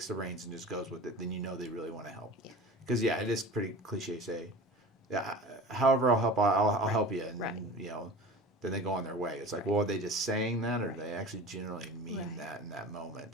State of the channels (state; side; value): normal; both; correlation 0.37